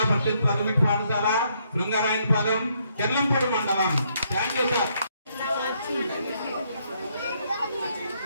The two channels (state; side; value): inverted; both; correlation -0.72